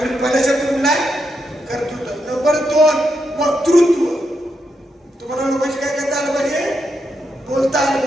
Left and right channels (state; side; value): normal; both; correlation 0.83